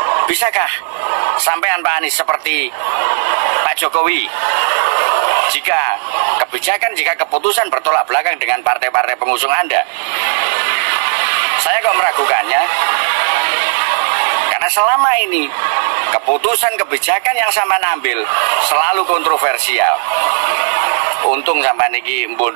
bisakah sampean Pak Anies seperti Pak Jokowi? Jika kebijakan, jika keputusan bertolak belakang dengan partai-partai pengusung Anda, saya kok meragukannya. Karena selama ini keputusan kebijakan yang sampean ambil selalu kontroversial. Untung sampean iki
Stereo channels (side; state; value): left; silent; digital silence